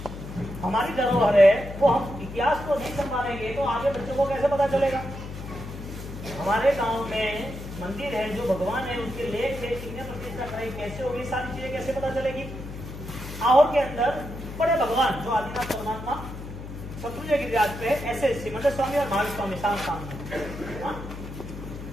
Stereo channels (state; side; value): noise; left; hum, 10 dB below the sound